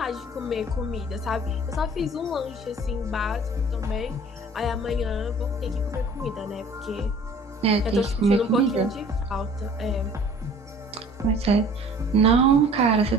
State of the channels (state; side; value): normal; both; correlation 0.49